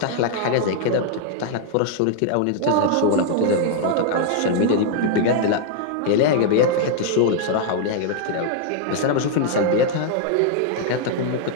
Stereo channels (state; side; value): different; both; correlation 0.00